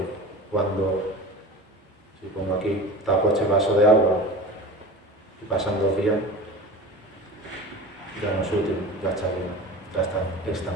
cuando, si pongo aquí, tapo este vaso de agua y pasan 2 días, ya no es útil, ya está llena, ya está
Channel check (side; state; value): both; normal; correlation 0.34